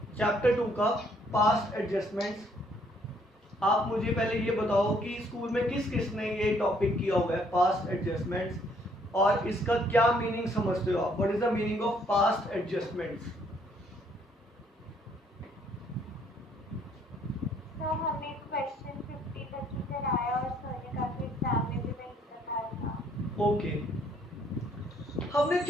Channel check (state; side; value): normal; both; correlation 0.65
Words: chapter 2 का पास्ट एडजस्टमेंट्स। आप मुझे पहले ये बताओ कि स्कूल में किस किसने ये टॉपिक किया हुआ है पास्ट एडजस्टमेंट्स, और इसका क्या मीनिंग समझते हो आप? What is the meaning of past adjustments? तो हमें क्वेश्चन 50 तक ही कराया और सर ने काफी एग्जाम में भी वही बताया था। ओके, हमने